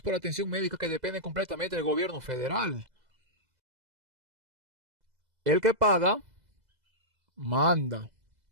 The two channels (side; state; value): left; late; 2.0 ms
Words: por atención médica que dependen completamente del gobierno federal. El que paga, manda.